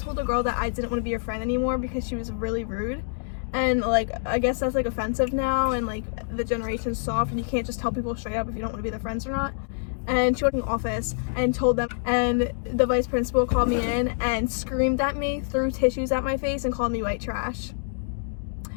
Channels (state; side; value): silent; right; digital silence